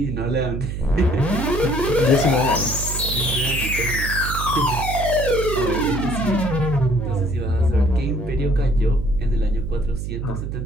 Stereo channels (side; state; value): right; noise; hum, 5 dB below the sound